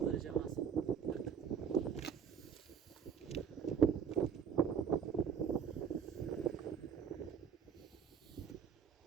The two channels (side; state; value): left; quieter; 7.5 dB